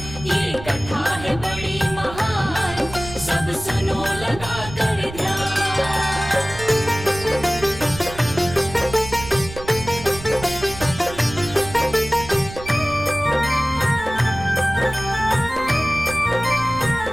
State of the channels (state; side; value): noise; right; rumble, 13 dB below the sound